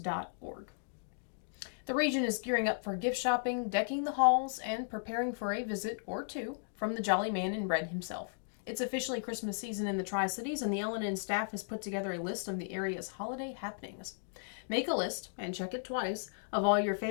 The region is gearing up for gift shopping, decking the halls, and preparing for a visit or 2 from the Jolly Man in Red himself. It's officially Christmas season in the Tri-Cities, and the LNN staff has put together a list of the area's holiday happenings. Make a list, and check it twice, of all your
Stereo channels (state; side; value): silent; right; digital silence